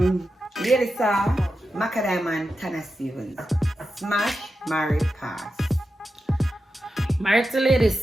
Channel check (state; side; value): normal; both; correlation 0.90